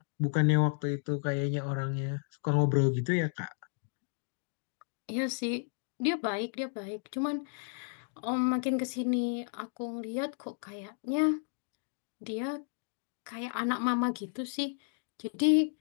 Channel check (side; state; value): right; silent; 56 dB below the other